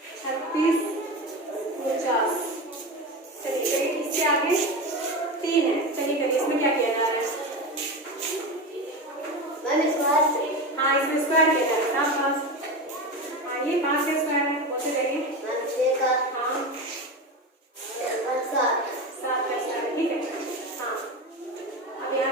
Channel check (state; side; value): normal; both; correlation 0.23